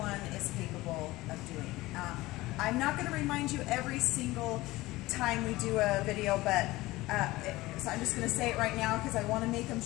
is capable of doing. I'm not going to remind you every single time we do a video, but so I'm just going to say it right now because I want to make them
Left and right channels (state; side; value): quieter; right; 19.0 dB